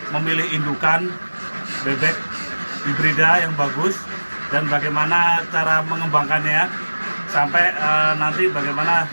memilih indukan bebek hibrida yang bagus dan bagaimana cara mengembangkannya sampai nanti bagaimana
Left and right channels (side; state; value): both; inverted; correlation -1.00